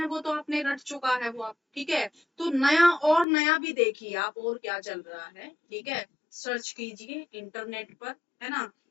वो तो आपने रट चुका है वो आप, ठीक है। तो नया, और नया भी देखिए आप, और क्या चल रहा है, ठीक है। सर्च कीजिए इंटरनेट पर, है ना,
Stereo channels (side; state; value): right; drops out; at 3.2 s